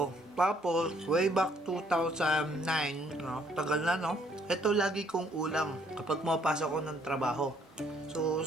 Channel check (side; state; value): both; normal; correlation 0.65